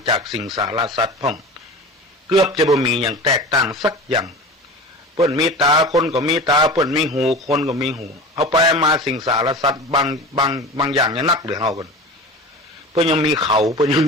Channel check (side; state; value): both; normal; correlation 0.34